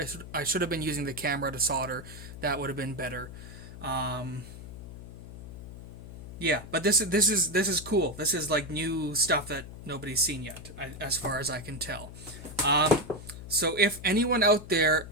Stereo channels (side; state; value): left; noise; hum, 13 dB below the sound